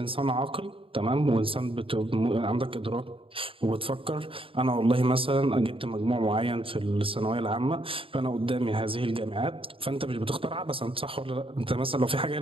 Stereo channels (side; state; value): left; late; 0.26 ms